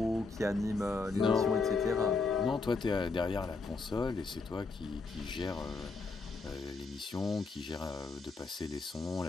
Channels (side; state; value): right; quieter; 4.2 dB